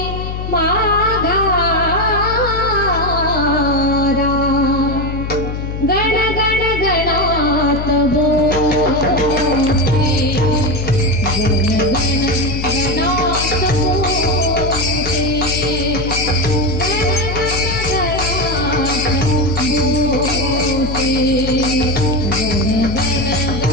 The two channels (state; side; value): noise; left; hum, 5 dB below the sound